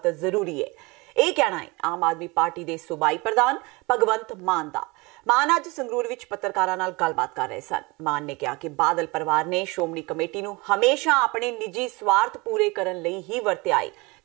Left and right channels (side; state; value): left; quieter; 25.5 dB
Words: ਜ਼ਰੂਰੀ ਹੈ। ਇਹ ਕਹਿਣਾ ਹੈ ਆਮ ਆਦਮੀ ਪਾਰਟੀ ਦੇ ਸੂਬਾਈ ਪ੍ਰਧਾਨ ਭਗਵੰਤ ਮਾਨ ਦਾ। ਮਾਨ ਅੱਜ ਸੰਗਰੂਰ ਵਿੱਚ ਪੱਤਰਕਾਰਾਂ ਨਾਲ ਗੱਲਬਾਤ ਕਰ ਰਹੇ ਸਨ। ਮਾਨ ਨੇ ਕਿਹਾ ਕਿ ਬਾਦਲ ਪਰਿਵਾਰ ਨੇ ਸ਼੍ਰੋਮਣੀ ਕਮੇਟੀ ਨੂੰ ਹਮੇਸ਼ਾ ਆਪਣੇ ਨਿੱਜੀ ਸਵਾਰਥ ਪੂਰੇ ਕਰਨ ਲਈ ਹੀ ਵਰਤਿਆ ਹੈ